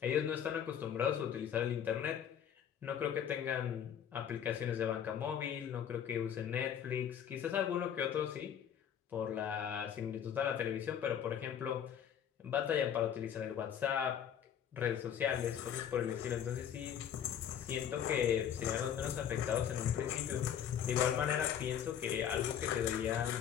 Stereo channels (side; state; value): right; quieter; 9.0 dB